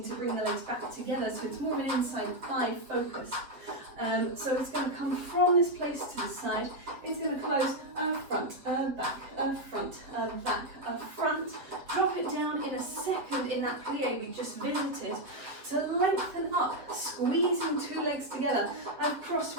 to bring the legs back together, so it's more of an inside thigh focus. So it's going to come from this place to the side. It's going to close front, back, front, back, front. Drop it down in a second in that plie we just visited to lengthen up, squeezing 2 legs together. I've crossed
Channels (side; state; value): left; late; 7.9 ms